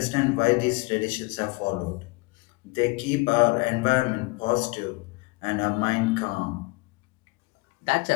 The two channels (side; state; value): right; quieter; 25.5 dB